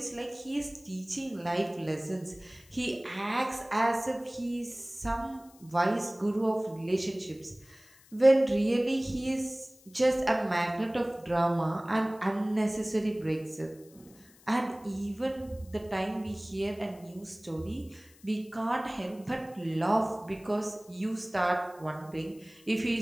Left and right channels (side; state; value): left; noise; hiss, 26 dB below the sound